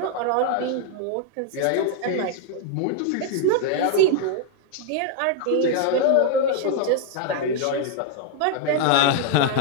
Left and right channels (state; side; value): different; both; correlation 0.00